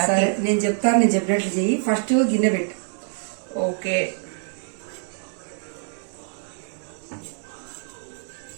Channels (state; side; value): silent; left; digital silence